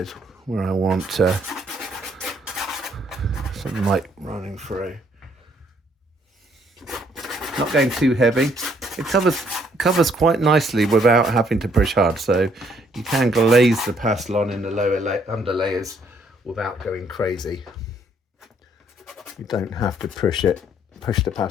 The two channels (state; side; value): normal; both; correlation 0.67